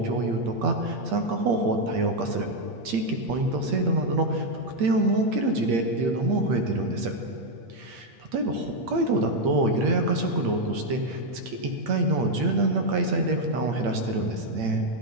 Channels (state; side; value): late; left; 8.6 ms